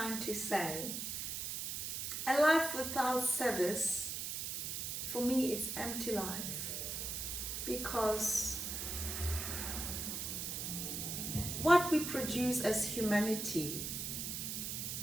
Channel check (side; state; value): right; noise; hiss, 3 dB below the sound